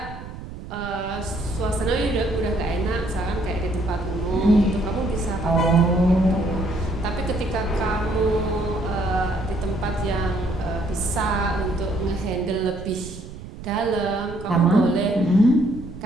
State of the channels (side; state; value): right; noise; rumble, 12 dB below the sound